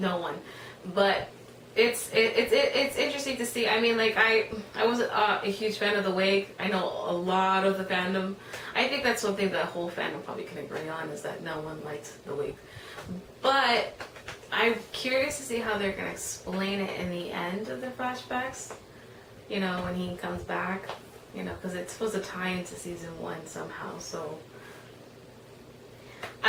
one, but it's interesting to see. I mean, like I wasn't a huge fan of the wig. I know a lot of the fandom. I think that's one thing that whole fandom probably can agree on, is that no one liked the wig. But I'm curious to see how they're gonna explain it in the end of the flashbacks. You know, when he comes back. You know, because it's supposed to tie into season 1 somehow. So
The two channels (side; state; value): both; identical; correlation 1.00